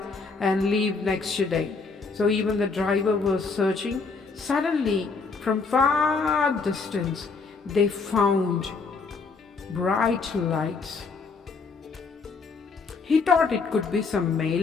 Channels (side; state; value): right; quieter; 4.5 dB